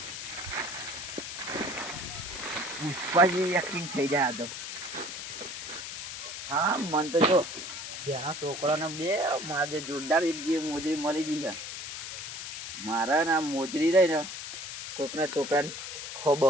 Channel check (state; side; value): noise; left; hiss, 7 dB below the sound